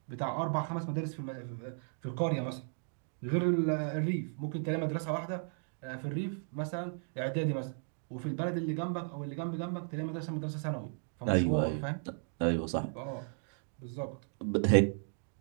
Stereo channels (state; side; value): silent; left; 54 dB below the other